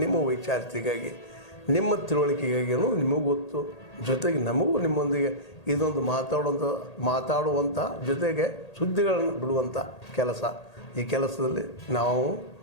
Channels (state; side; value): late; right; 1.8 ms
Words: ನಿಮ್ಮ ವೈಚಾರಿಕೆಗಾಗಿ, ನಿಮ್ಮ ತಿಳುವಳಿಕೆಗಾಗಿ ನಿಮಗೂ ಗೊತ್ತು. ಜೊತೆಗೆ ನಮಗೂ ನಿಮ್ಮೊಂದಿಗೆ ಇದೊಂದು ಮಾತಾಡುವಂಥ ಜೊತೆಗೆ ಸುದ್ದಿಗಳನ್ನು ಬಿಡುವಂಥ ಕೆಲಸ. ಈ ಕೆಲಸದಲ್ಲಿ ನಾವು